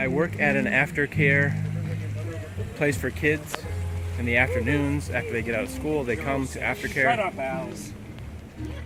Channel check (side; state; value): both; identical; correlation 1.00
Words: work at an aftercare place for kids. In the afternoons, after they get out of school, they come to aftercare. Shut up, Alice.